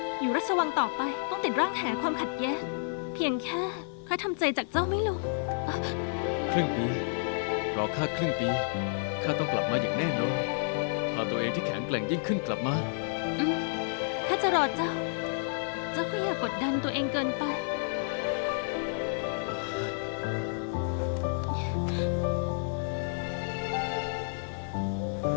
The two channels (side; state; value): right; silent; 58 dB below the other